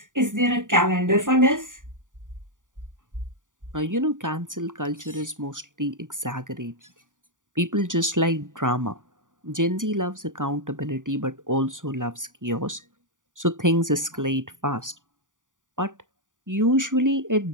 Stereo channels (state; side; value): late; left; 0.88 ms